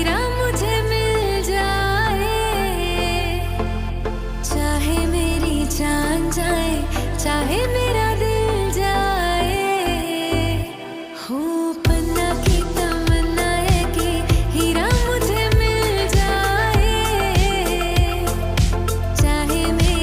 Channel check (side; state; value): both; identical; correlation 1.00